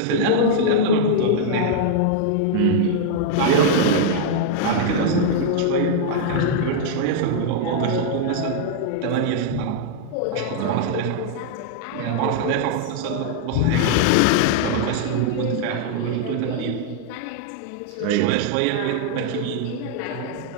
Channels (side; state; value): both; different; correlation -0.01